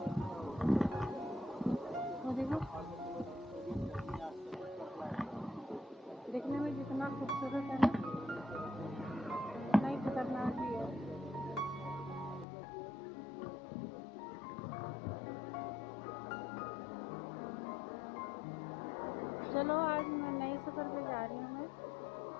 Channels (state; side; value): drops out; right; at 12.5 s